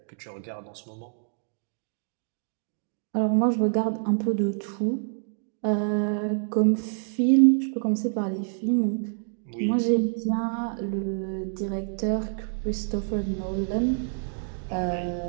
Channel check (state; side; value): silent; left; digital silence